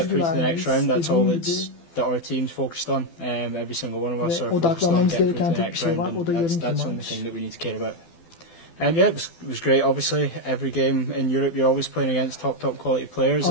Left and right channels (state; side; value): late; right; 12 ms